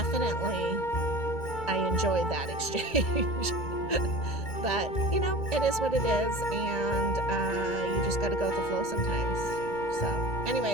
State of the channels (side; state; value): right; late; 2.3 ms